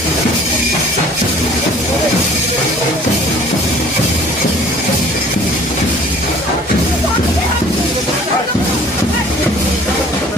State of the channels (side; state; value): both; normal; correlation 0.52